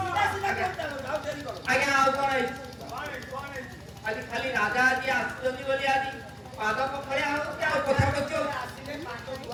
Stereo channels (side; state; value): both; identical; correlation 1.00